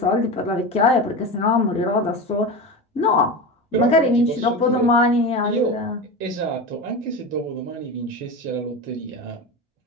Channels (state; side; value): normal; both; correlation 0.25